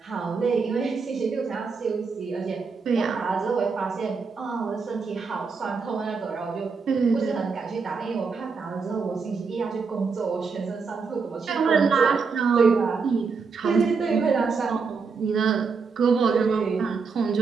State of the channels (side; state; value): left; quieter; 5.1 dB